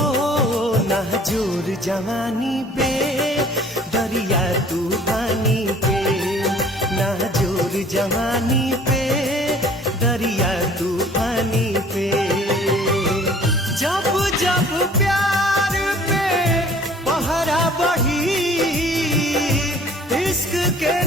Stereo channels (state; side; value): normal; both; correlation 0.52